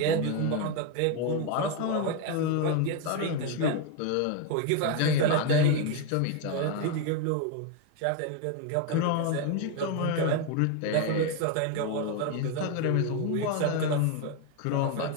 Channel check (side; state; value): both; different; correlation 0.01